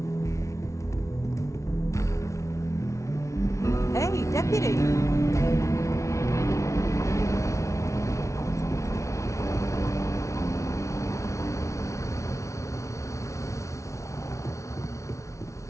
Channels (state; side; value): late; right; 0.14 ms